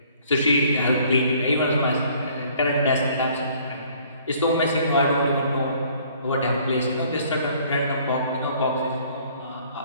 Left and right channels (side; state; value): both; inverted; correlation -0.58